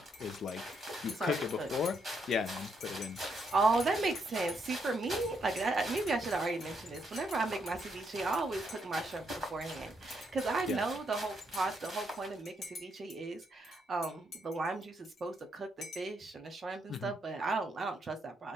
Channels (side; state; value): both; normal; correlation 0.76